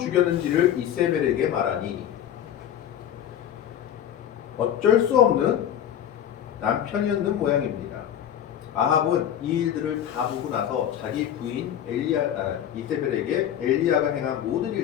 이세벨에게 말하니, 어쩔 수 없는 남편이었는 모양입니다. 아합은 이 일들을 다 보고 나서 자기 부인 이세벨에게 엘리야가 행한 모든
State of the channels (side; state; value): right; quieter; 10.3 dB